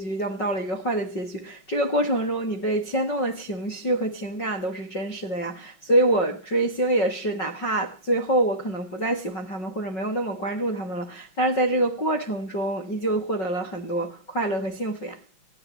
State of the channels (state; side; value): late; right; 5.4 ms